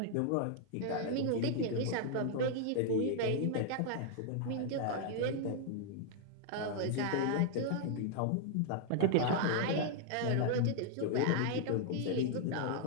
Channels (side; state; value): both; different; correlation 0.00